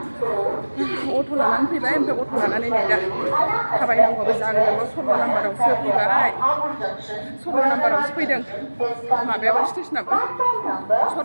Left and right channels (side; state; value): both; inverted; correlation -1.00